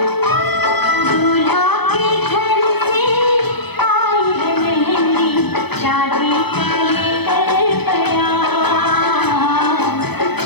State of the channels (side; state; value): right; late; 0.98 ms